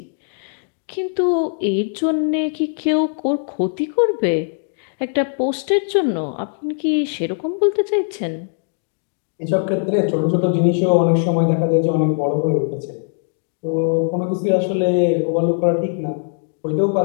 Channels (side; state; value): right; silent; digital silence